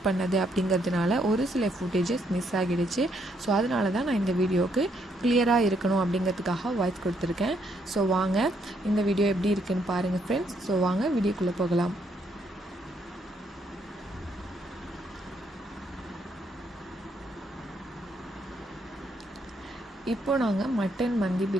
பண்ணது அப்படிங்கிறதுனால ஒரு சில ஃபுட்டேஜஸ் மிஸ் ஆகிடுச்சு. ஸோ அதனால தான் நான் இந்த வீடியோக்கு கிளியராக இருக்கணும் அப்படிங்கிறதுக்காக வாய்ஸ் கொடுத்துருக்கேன். ஸோ வாங்க இந்த வீடியோ எப்படி இருக்குன்னு பாருங்கள் ஃப்ரெண்ட்ஸ். ஸோ வாங்க வீடியோக்குள்ளே போகலாம். இப்போ நாங்கள் மட்டன் மந்தி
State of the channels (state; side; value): normal; both; correlation 0.73